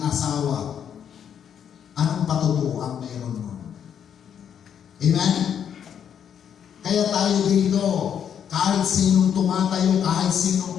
asawa. Anong patutuo ang meron nun? Amen? Kaya tayo dito, kahit sinong tumatayo, kahit sinong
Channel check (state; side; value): quieter; right; 8.5 dB